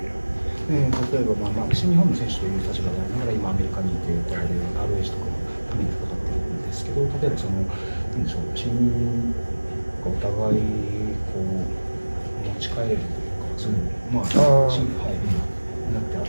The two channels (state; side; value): inverted; both; correlation -1.00